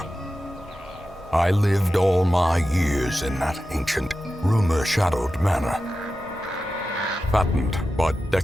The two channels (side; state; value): both; normal; correlation 0.92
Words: I lived all my years in that ancient, rumor-shadowed manor, fattened by